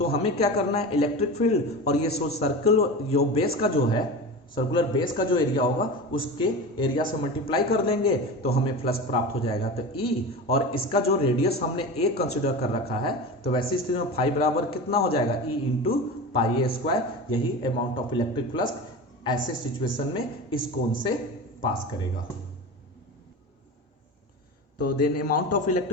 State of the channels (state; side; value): normal; both; correlation 0.28